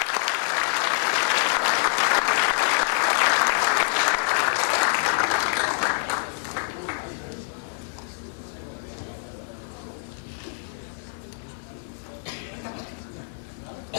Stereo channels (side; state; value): right; silent; digital silence